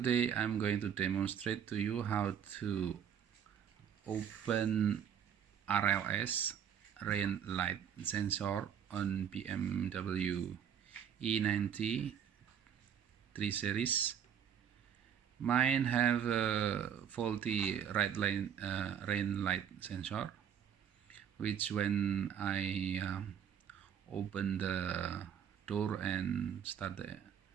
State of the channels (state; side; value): quieter; left; 8.7 dB